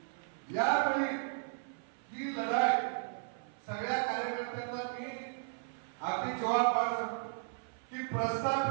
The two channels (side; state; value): left; silent; 54 dB below the other